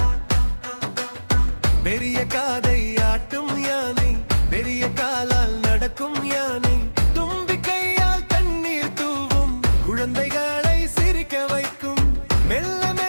பெரிய காதை ஆட்டும் யானை, பெரிய காலால் நடக்கும் யானை, தும்பிக்கையால் தண்ணீர் தூவும் குழந்தைகளை சிரிக்க வைக்கும். மெல்ல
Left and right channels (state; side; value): inverted; both; correlation -1.00